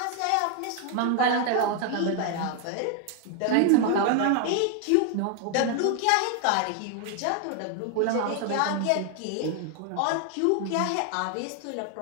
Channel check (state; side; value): different; both; correlation 0.00